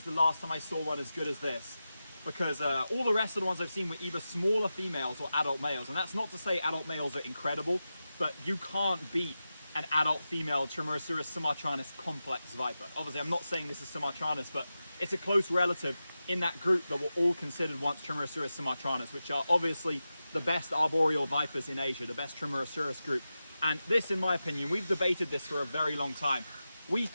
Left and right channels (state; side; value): inverted; both; correlation -0.92